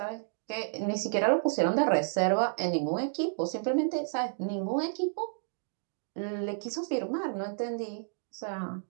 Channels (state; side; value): silent; left; digital silence